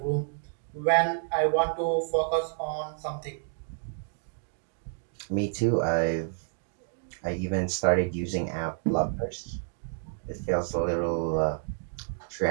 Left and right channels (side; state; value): left; silent; digital silence